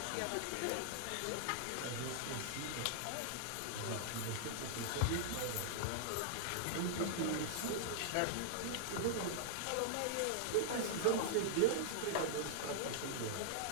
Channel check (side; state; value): both; different; correlation -0.01